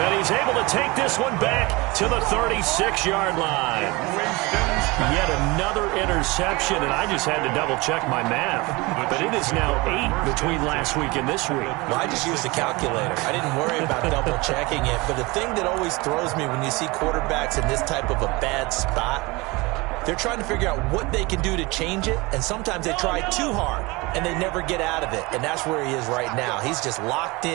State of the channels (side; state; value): left; quieter; 24.1 dB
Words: he's able to take this one back to the 36-yard line. Yet another interception, and I just had to double-check my math. But it is now 8 between last week and this week. Well, I just used a calculator. I didn't worry about double-checking it. But the thing that always throws me when you see quarterbacks in this type of a bad spot, they're trying to figure out what they can do to change it, and sometimes they try too hard, and they never get out of it. And that's where he is right now. He's just locked